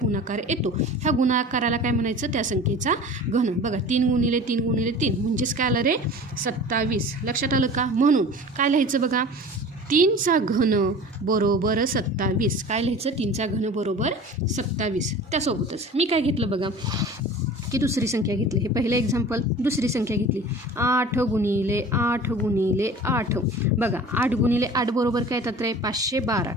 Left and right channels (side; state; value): both; normal; correlation 0.40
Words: येतो ह्या गुणाकाराला काय म्हणायचं? त्या संख्येचा घन. बघा 3 गुणिले 3 गुणिले 3 म्हणजेच काय आलं रे? 27. लक्षात आलं का? म्हणून काय लिहायचं बघा, 3चा घन बरोबर 27. काय लिहायचं? 3चा घन बरोबर 27. त्यासोबतच मी काय घेतलं बघा की दुसरी संख्या घेतली. हे पहिलं एक्झाम्पल. दुसरी संख्या घेतली 8 गुणिले 8 गुणिले 8. बघा 8 गुणिले 8 बरोबर काय येतात रे? 512.